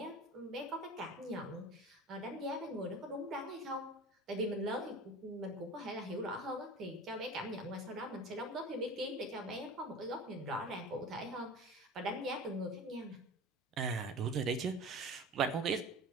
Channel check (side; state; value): both; normal; correlation 0.36